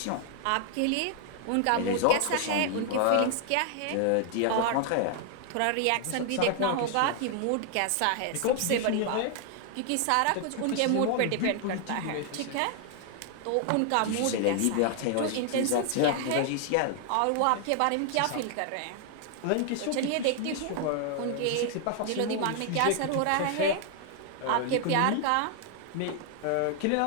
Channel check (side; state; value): both; different; correlation 0.00